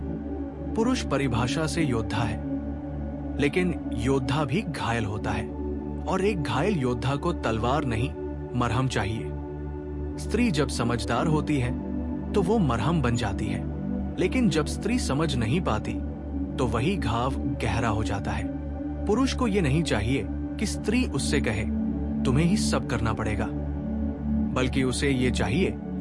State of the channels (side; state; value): both; identical; correlation 1.00